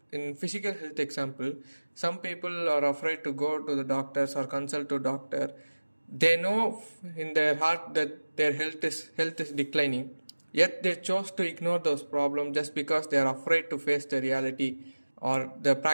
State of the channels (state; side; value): inverted; both; correlation -1.00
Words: in physical health example, some people are afraid to go to the doctors or consult to doctor. They know in their heart that their health is declining, yet they chose to ignore those problems just because they are afraid to face the reality or the